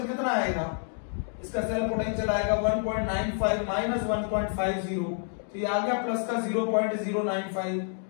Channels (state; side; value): silent; right; 59 dB below the other